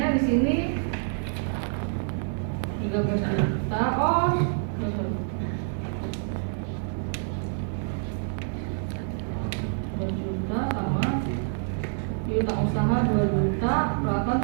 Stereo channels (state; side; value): silent; left; digital silence